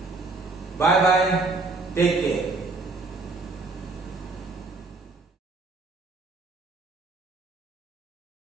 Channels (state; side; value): quieter; left; 3.6 dB